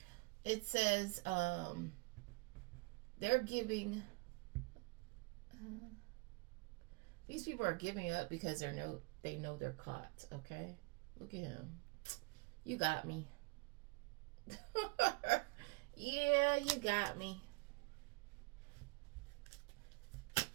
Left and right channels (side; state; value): left; quieter; 27.1 dB